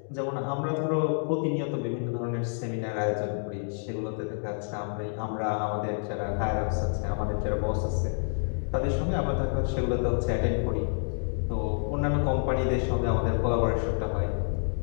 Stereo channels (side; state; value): right; silent; digital silence